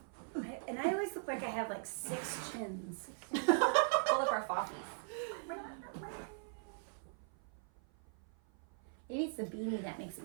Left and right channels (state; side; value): silent; left; 51 dB below the other